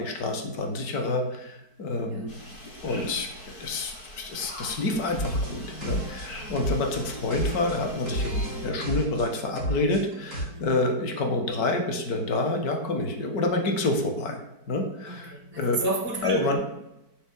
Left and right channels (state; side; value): late; right; 4.6 ms